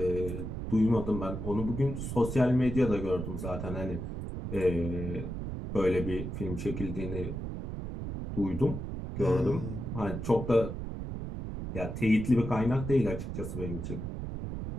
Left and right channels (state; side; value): noise; right; rumble, 6 dB below the sound